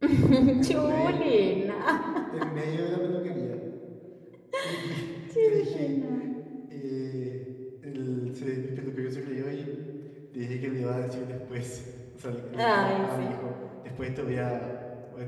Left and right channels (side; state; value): both; identical; correlation 1.00